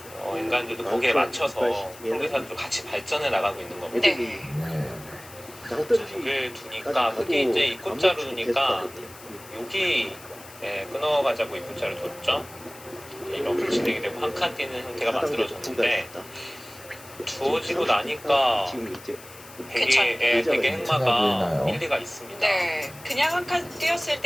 인간들도 거기에 맞춰서 프로기사들도 같이 발전해 나가고 있는 겁니다. 애들이 장떨어지 자극을 두니까 흙이 이제 입구자로 두니까 여기 끊어가자고 입구자를 뒀죠. 이렇게 진행이 되고 한 칸 뛰는 형태가 만들어졌는데 주어지고 나니까 지금 이제 되게 행마가 일리가 있습니다. 네, 그냥 한 칸 뛰었을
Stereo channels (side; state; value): left; noise; hiss, 19 dB below the sound